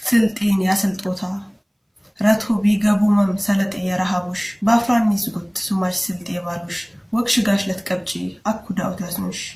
ስልጤን ያስልጦታ ረቶ ቢገቡመም ሰለጤ የረሃቡሽ ባፍራን ይስጉት ሱማሽ ስልጤ ባሉሽ ወክሽ ጋሽ ለትቀብጪ አኩዳውት ያስኑሽ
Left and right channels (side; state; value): both; identical; correlation 1.00